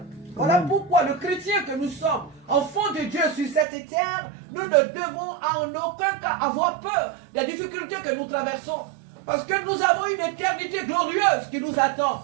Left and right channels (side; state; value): left; drops out; at 3.7 s